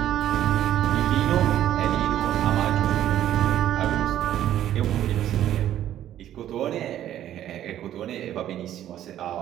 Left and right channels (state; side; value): quieter; left; 11.9 dB